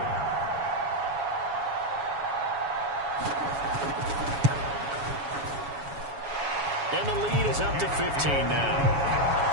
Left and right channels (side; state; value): left; late; 7.2 ms